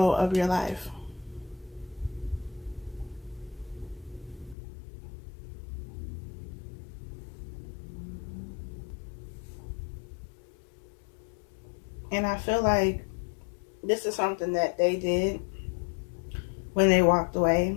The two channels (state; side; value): drops out; right; at 4.5 s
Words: of your life. And I feel like this is something that they did when they walked away.